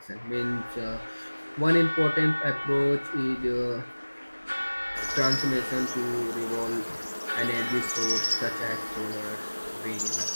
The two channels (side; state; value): both; inverted; correlation -1.00